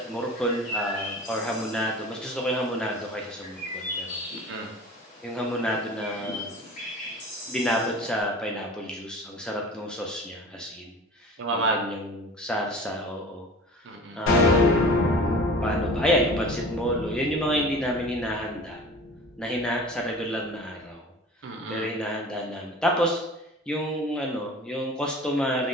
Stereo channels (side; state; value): both; normal; correlation 0.39